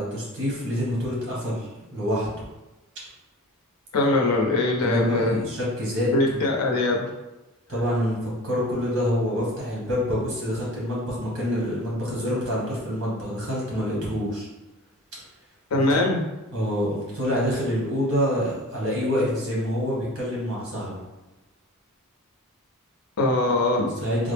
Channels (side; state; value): both; normal; correlation 0.39